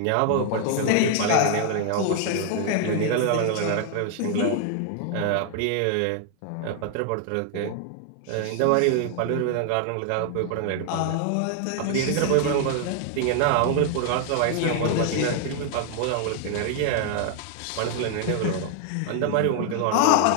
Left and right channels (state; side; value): different; both; correlation 0.00